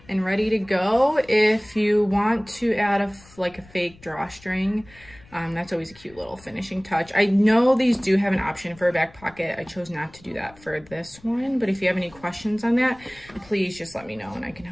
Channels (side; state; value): left; noise; rumble, 24 dB below the sound